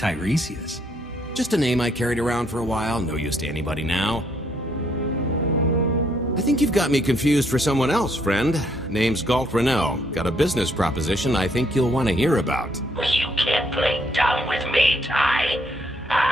Just a name I carried around for a while, no use to anybody now. I think you've got me confused for someone else, friend. Name's Galt Renault. Got a business proposition I think you'll want to hear about. You can't play dumb with me, Ty.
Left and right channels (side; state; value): both; normal; correlation 0.70